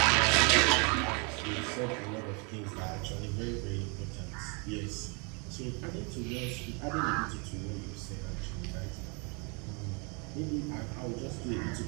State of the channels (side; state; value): left; quieter; 33.3 dB